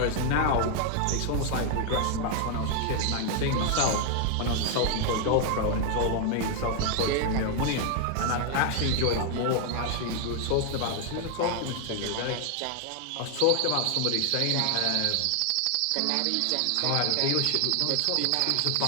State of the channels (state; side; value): different; both; correlation 0.00